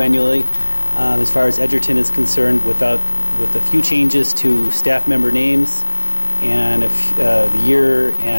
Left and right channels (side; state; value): both; inverted; correlation -1.00